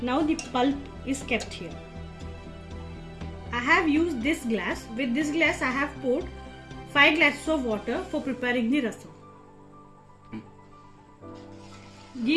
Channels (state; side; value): identical; both; correlation 1.00